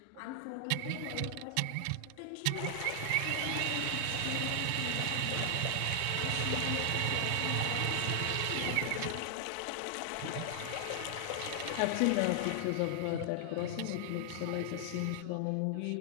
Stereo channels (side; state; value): both; different; correlation 0.00